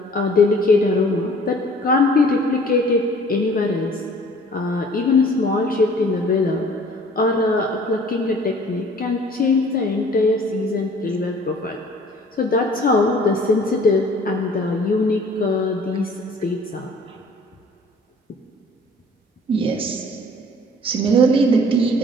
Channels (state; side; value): normal; both; correlation 0.52